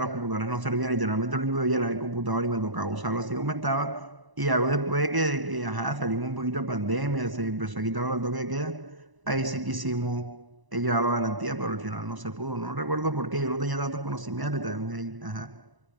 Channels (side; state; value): left; late; 1.0 ms